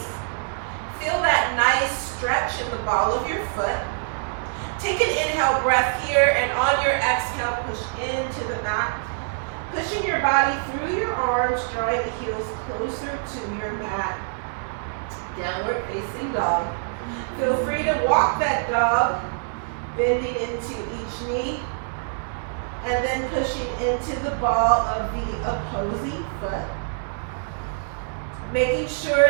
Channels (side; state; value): left; silent; digital silence